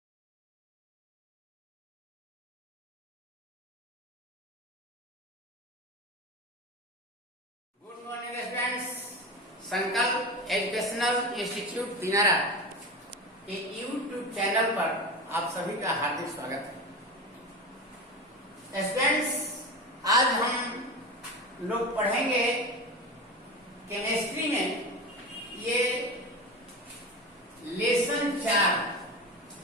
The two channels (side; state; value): both; normal; correlation 0.26